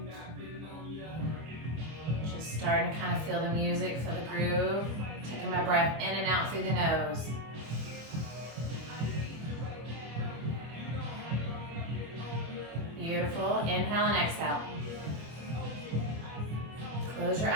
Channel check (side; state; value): left; late; 25 ms